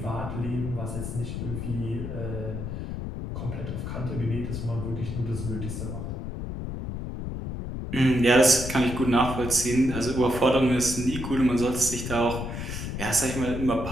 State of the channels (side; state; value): left; noise; rumble, 6 dB below the sound